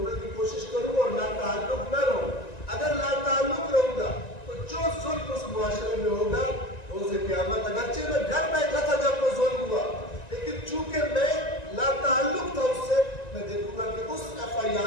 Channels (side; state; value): right; late; 1.9 ms